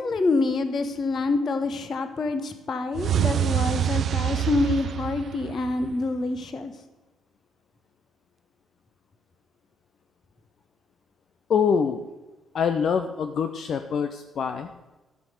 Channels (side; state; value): both; normal; correlation 0.71